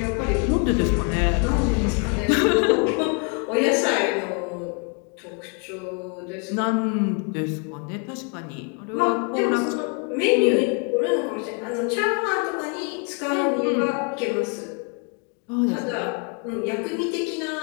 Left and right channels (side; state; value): right; quieter; 37.6 dB